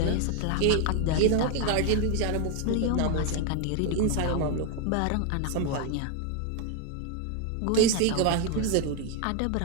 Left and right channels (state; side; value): different; both; correlation 0.01